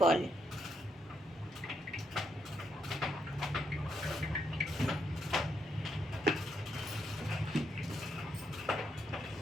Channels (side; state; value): both; normal; correlation 0.78